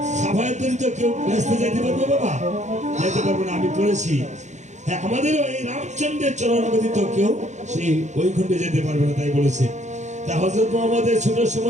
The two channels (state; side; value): late; left; 0.34 ms